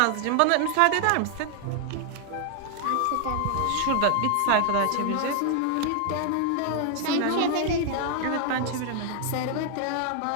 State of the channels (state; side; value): different; both; correlation 0.00